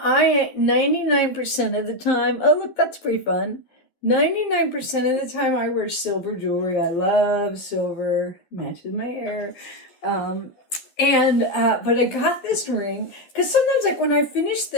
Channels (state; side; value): late; right; 12 ms